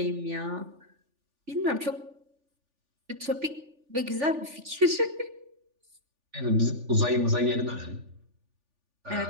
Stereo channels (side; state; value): left; late; 3.4 ms